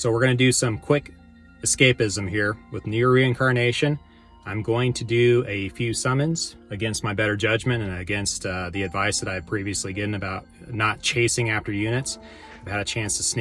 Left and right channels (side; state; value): both; identical; correlation 1.00